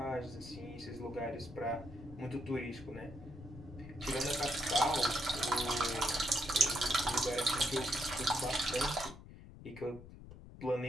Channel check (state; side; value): noise; left; rumble, 16 dB below the sound